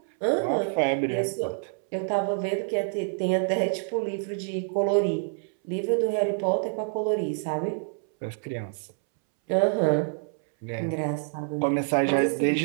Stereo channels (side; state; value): left; silent; 60 dB below the other